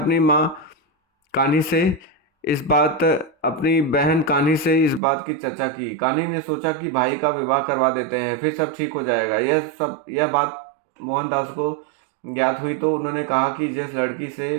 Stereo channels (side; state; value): left; drops out; at 5.0 s